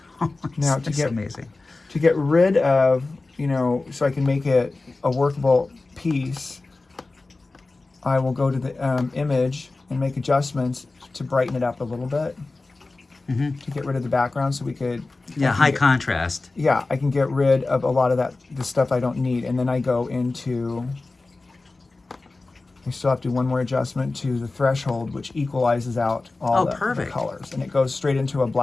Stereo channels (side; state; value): right; quieter; 3.4 dB